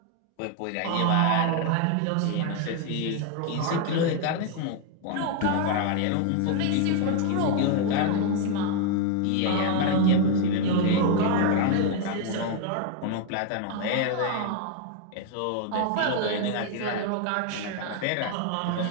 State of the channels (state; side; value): different; both; correlation 0.00